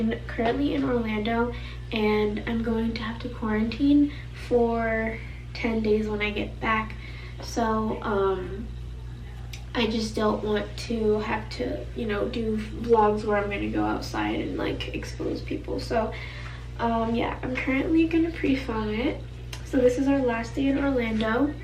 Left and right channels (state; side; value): identical; both; correlation 1.00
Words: currently in Orlando and I'm going to have to quarantine for 10 days when I get back. So I just don't want to have to, you know, do vlogs where I'm gonna go outside and like expose people. So yeah, I'm currently gonna pre-film it. So this is our last day in Orlando.